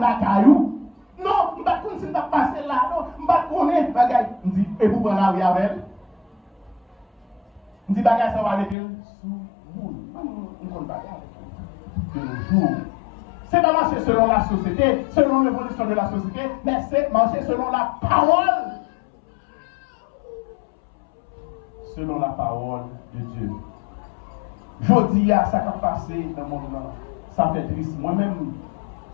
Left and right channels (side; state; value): right; drops out; at 8.8 s